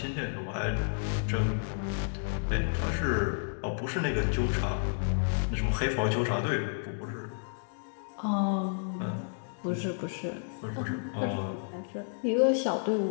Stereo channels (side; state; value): right; silent; digital silence